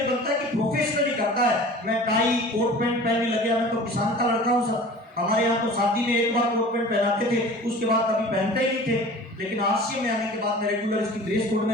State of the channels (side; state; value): both; normal; correlation 0.42